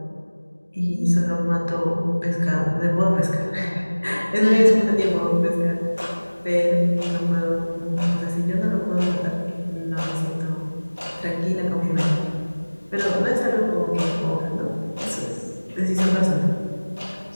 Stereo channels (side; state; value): both; inverted; correlation -1.00